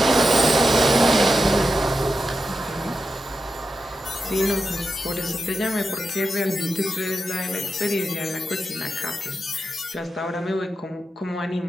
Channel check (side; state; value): both; normal; correlation 0.89